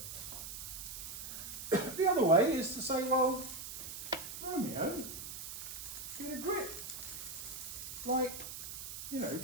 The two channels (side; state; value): right; noise; hiss, 8 dB below the sound